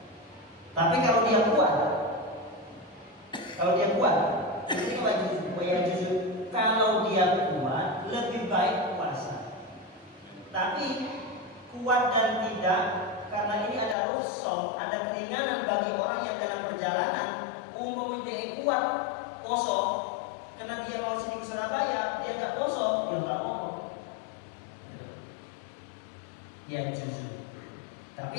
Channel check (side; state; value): right; drops out; at 14.0 s